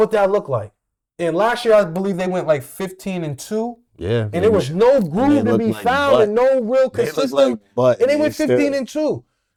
that looked like. And last year, I believe they went like 15-2. Yeah. And there was no groove to be found and no real consistent. And they went 15-2.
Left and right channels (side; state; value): both; identical; correlation 1.00